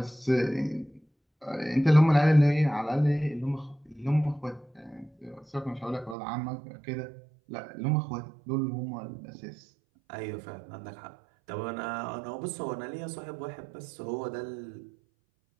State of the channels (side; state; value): left; drops out; at 6.2 s